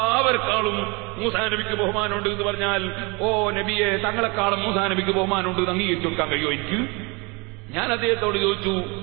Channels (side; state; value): left; quieter; 28.2 dB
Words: മൂസാ നബിക്ക് ബഹുമാനമുണ്ട് എന്ന് പറഞ്ഞാൽ, ഓ നബിയെ, തങ്ങളെക്കാളും മൂസാ നബിക്ക് ബഹുമാനമുണ്ട് എന്ന് അംഗീകരിച്ചു കൊടുക്കാൻ കഴിയുമോ എനിക്ക്? ഞാൻ അദ്ദേഹത്തോട് ചോദിച്ചു,